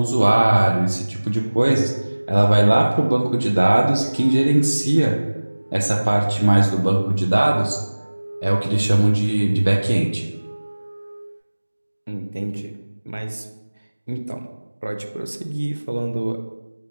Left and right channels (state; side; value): inverted; both; correlation -1.00